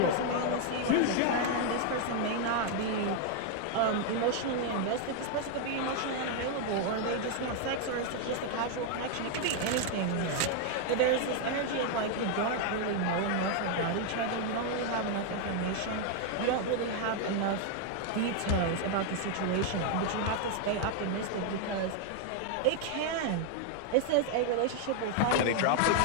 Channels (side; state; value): both; different; correlation 0.00